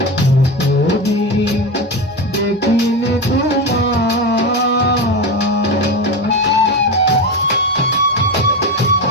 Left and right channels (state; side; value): normal; both; correlation 0.19